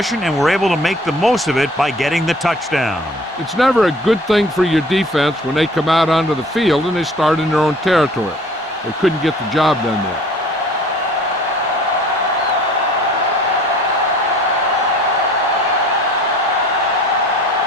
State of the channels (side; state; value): both; normal; correlation 0.50